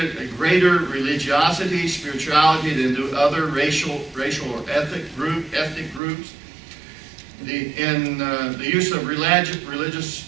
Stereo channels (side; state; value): left; drops out; at 6.0 s